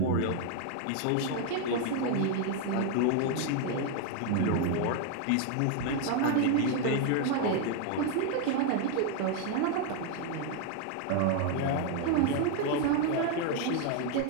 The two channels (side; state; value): both; different; correlation 0.00